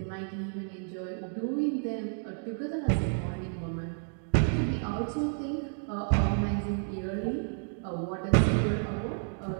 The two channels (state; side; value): silent; left; 57 dB below the other